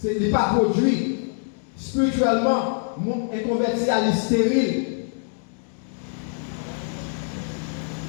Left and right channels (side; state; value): right; silent; 60 dB below the other